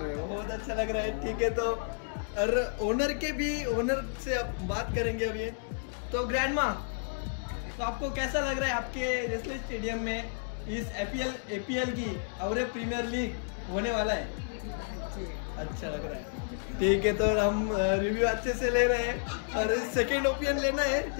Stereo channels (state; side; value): silent; right; digital silence